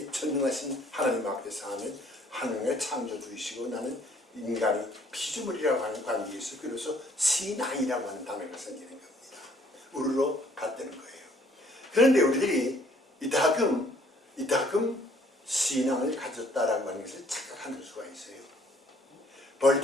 전능하신 하나님 앞에서 하는 하나님의 창조주이시고 나는 인간이 피조물이라고 하는 관계에서 그래서 신앙이라고 하는 단어가 생기는 겁니다. 우르르 같다는 거예요. 그런데 우리들이 이따금 신앙을 가졌다라고 하는 것을 착각하는 수가 있어요.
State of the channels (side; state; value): both; normal; correlation 0.61